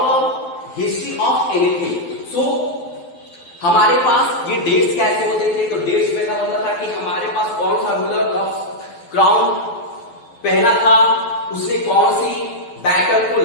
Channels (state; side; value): late; right; 12 ms